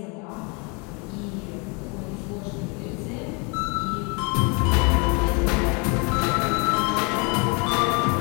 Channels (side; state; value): right; quieter; 32.0 dB